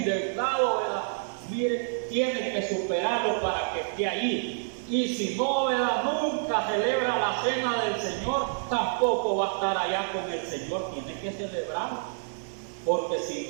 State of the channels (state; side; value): silent; left; digital silence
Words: ¿verdad? Mire, tiene que superarlo para que esté allí. Y si no, ¿verdad? Nunca celebra la cena del Señor, tampoco va a estar allá con el Señor. Tiene que celebrarlo. Porque si